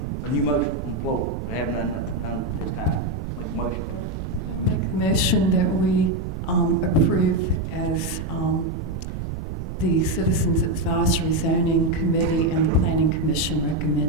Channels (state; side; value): noise; right; rumble, 6 dB below the sound